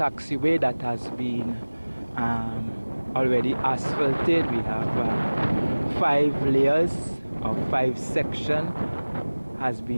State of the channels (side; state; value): both; inverted; correlation -1.00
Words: that has been already asphalted. We have 5 layers or 5 sections has